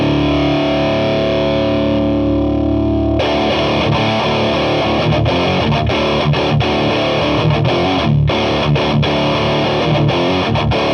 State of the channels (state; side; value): identical; both; correlation 1.00